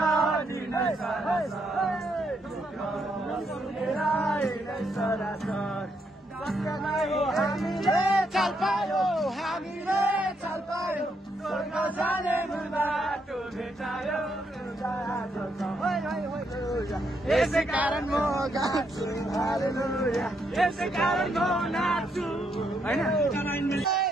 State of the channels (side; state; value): both; normal; correlation 0.77